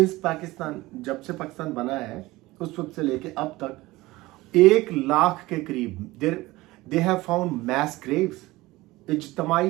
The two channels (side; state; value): left; quieter; 19.5 dB